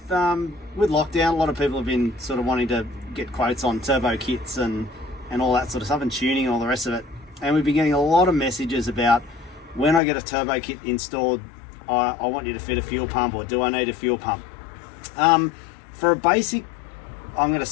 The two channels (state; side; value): drops out; right; at 10.0 s